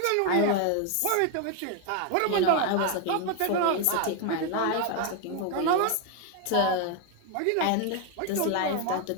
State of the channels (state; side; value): different; both; correlation 0.01